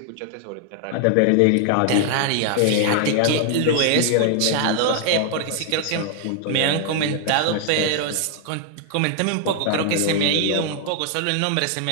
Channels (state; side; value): different; both; correlation 0.00